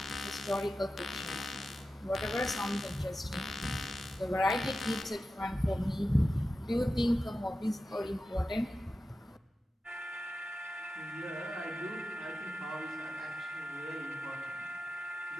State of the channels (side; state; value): both; normal; correlation 0.92